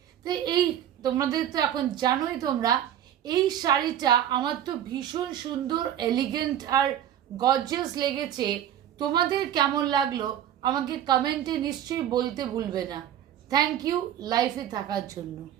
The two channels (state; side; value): quieter; left; 10.7 dB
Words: তো এই তোমাদের তো এখন জানোই তোমরা, এই শাড়িটা আমার তো ভীষণ সুন্দর, এলিগেন্ট আর গর্জিয়াস লেগেছে। তোমাদের কেমন লাগলো আমাকে কমেন্টে নিশ্চয়ই বলতে ভুলবে না। থ্যাংক ইউ লাইফে থাকার জন্য।